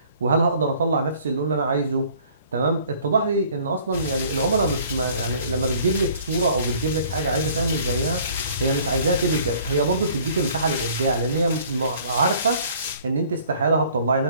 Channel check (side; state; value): both; inverted; correlation -0.55